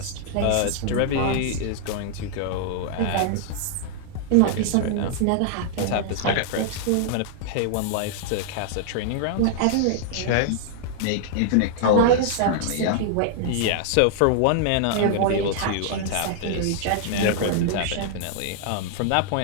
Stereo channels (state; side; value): different; both; correlation -0.01